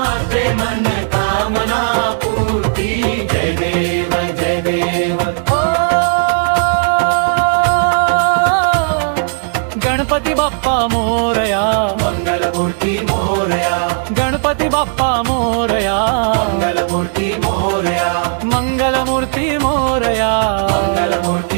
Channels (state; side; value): silent; left; digital silence